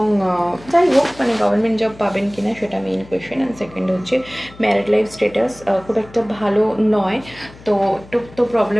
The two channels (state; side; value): noise; left; hum, 21 dB below the sound